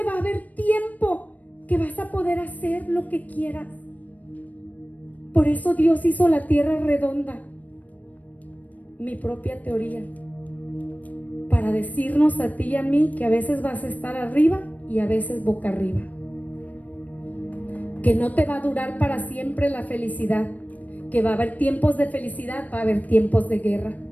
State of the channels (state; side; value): late; right; 0.074 ms